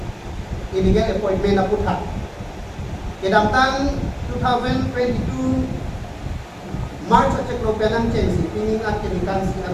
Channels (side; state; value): both; identical; correlation 1.00